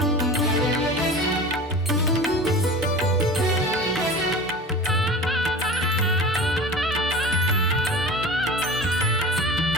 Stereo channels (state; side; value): normal; both; correlation 0.35